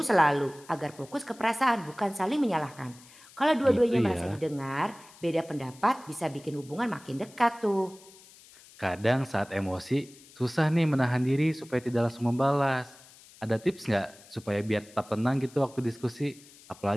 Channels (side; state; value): left; noise; hiss, 23 dB below the sound